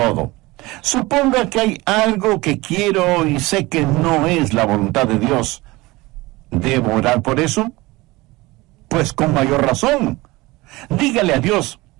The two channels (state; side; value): quieter; left; 21.2 dB